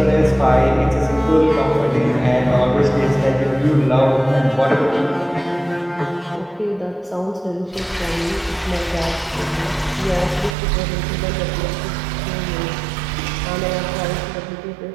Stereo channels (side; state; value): left; drops out; at 10.6 s